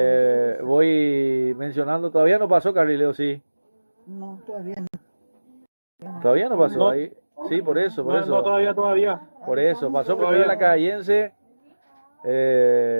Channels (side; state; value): both; inverted; correlation -1.00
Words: voy mencionando, todavía no pasó Carrileo, sí. No, todavía no. Todavía no pasó No. ahí. Sí, por eso. No, todavía. Por eso, pasó Todavía. primero la Cayense.